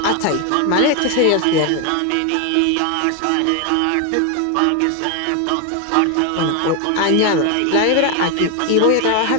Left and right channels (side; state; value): both; different; correlation 0.01